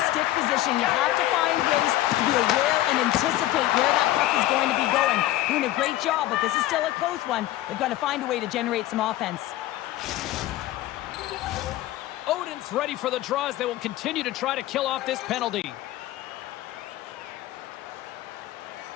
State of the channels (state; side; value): quieter; right; 15.1 dB